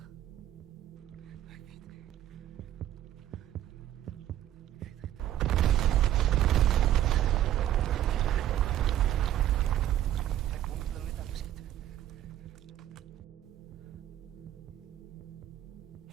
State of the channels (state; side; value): quieter; left; 12.2 dB